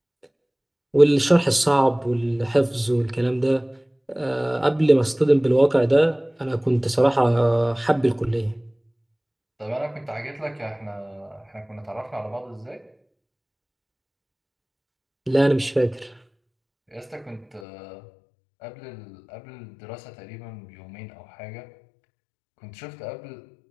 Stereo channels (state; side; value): drops out; right; at 17.7 s